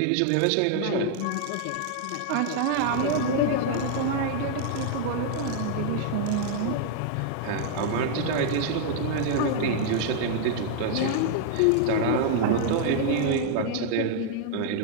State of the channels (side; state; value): both; different; correlation 0.00